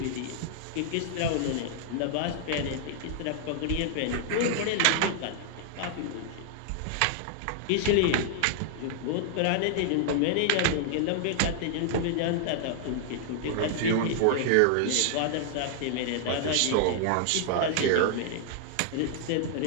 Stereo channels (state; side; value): different; both; correlation -0.01